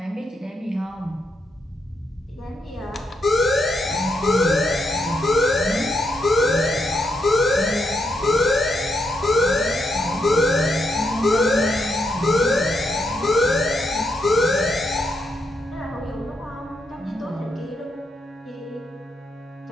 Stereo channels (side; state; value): both; normal; correlation 0.80